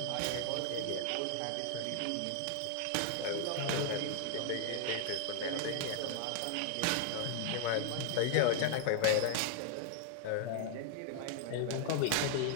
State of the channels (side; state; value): both; different; correlation 0.00